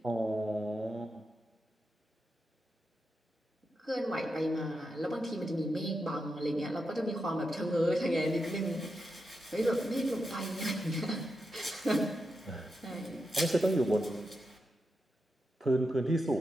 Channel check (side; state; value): both; normal; correlation 0.87